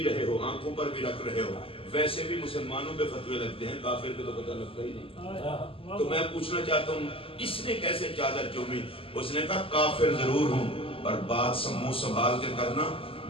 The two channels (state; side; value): late; right; 0.26 ms